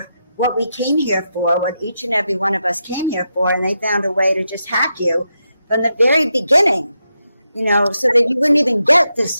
what we came here for, what each and every one of us came here for, and they found a way to just hack you from the very beginning, so that you wouldn't even get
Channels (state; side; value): inverted; both; correlation -0.85